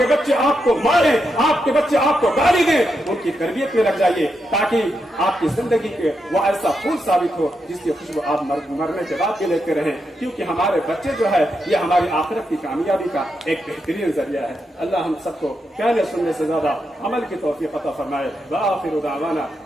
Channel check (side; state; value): both; normal; correlation 0.84